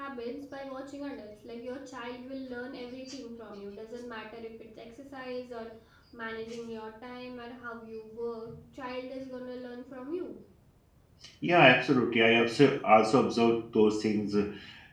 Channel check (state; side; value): identical; both; correlation 1.00